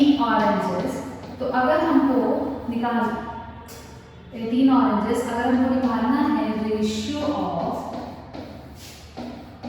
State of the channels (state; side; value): identical; both; correlation 1.00